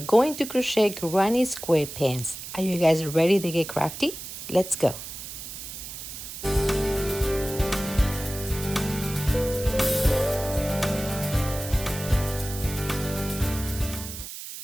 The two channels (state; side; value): noise; right; hiss, 10 dB below the sound